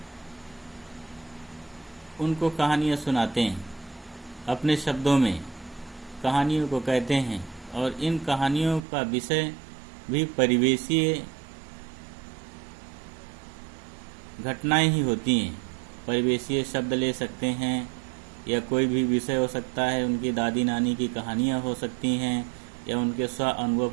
उनको कहानियाँ सुनाते हैं, अपने शब्दों में कहानियों को कहते हैं, और इन कहानियों का विषय भी परिवेशीय घटनाएं ही होती हैं। परिवेशीय शब्द ले सकते हैं या कोई भी विषय हो सकता है। उनकी दादी नानी की कहानियाँ हो सकती हैं या उनके स्व अनुभव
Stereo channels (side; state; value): left; drops out; at 8.8 s